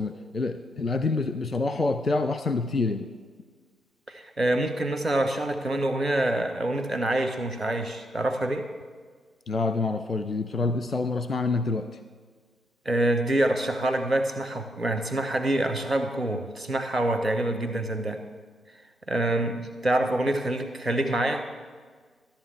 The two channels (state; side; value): normal; both; correlation 0.77